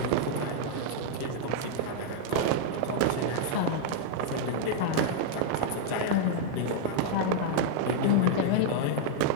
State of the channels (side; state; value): both; different; correlation -0.01